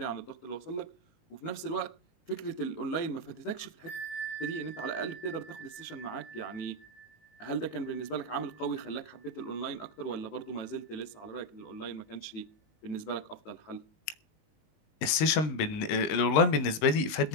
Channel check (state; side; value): late; right; 19 ms